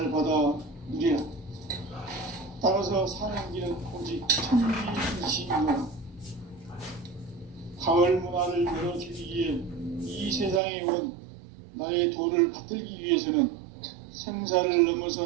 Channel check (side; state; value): left; drops out; at 10.6 s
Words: 받아 누리라. 따라서 사는 길은 오직 천리일심이노라. 가을 문화를 열어주기 위해 이 세상에 온 나의 도를 받들기 위해서는 생사를